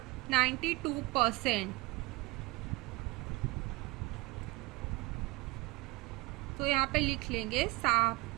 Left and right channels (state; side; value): quieter; left; 22.6 dB